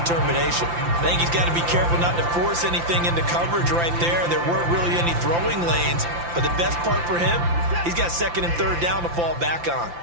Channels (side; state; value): left; late; 5.8 ms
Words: I think he's got to be careful not to force anything into coverage right there. There weren't really any throwing lanes. But the best part for him, he's got 2nd and 3rd down to fall back on.